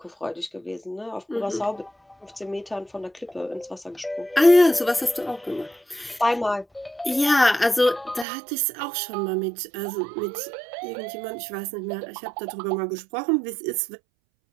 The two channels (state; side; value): drops out; left; at 8.2 s